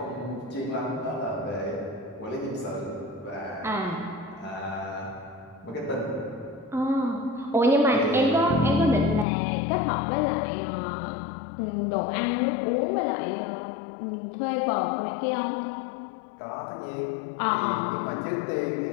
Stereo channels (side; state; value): right; drops out; at 9.2 s